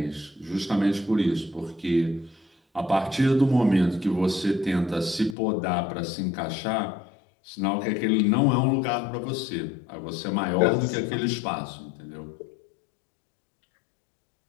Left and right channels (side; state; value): right; drops out; at 5.4 s